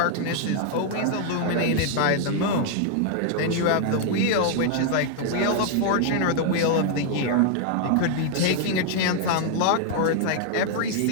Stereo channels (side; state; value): both; different; correlation 0.00